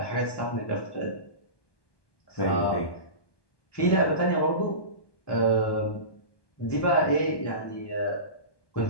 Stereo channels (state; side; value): late; right; 1.2 ms